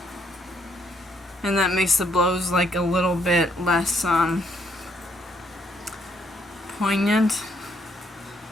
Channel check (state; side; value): normal; both; correlation 0.70